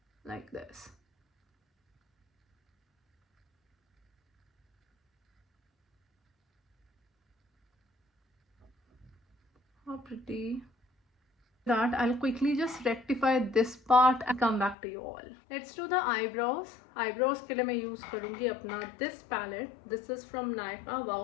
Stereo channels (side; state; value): right; drops out; at 14.8 s